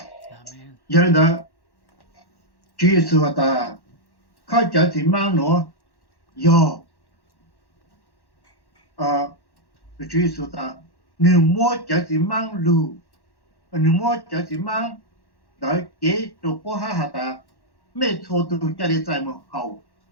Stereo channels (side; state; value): right; late; 1.1 ms